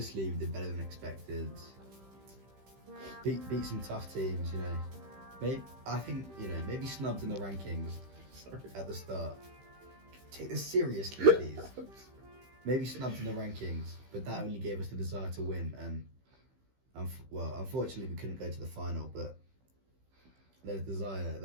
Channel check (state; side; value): late; left; 15 ms